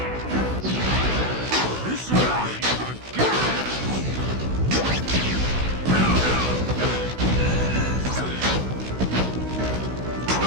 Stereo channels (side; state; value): left; late; 16 ms